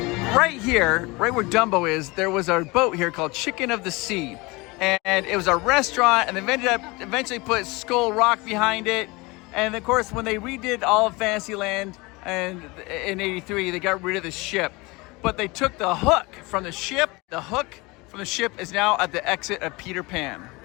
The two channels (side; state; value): right; quieter; 24.5 dB